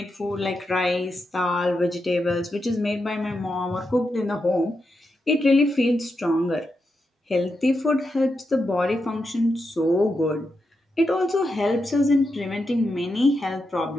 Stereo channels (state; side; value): normal; both; correlation 0.86